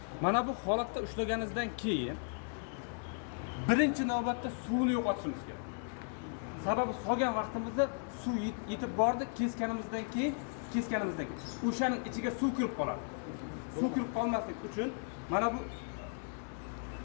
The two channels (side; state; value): right; silent; 54 dB below the other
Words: mana bu holatda ushlaganingizdan keyin birinchi navbatda suvni yo'qotishimiz kerak. Sababi solgan vaqtimizda suv yetib bordi, kesganimizdan keyin o'shaning ichiga suv kirib qoladi. Suv kirib qolmaslik uchun mana bu